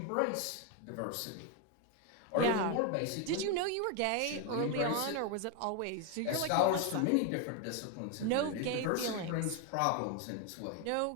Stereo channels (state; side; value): different; both; correlation 0.01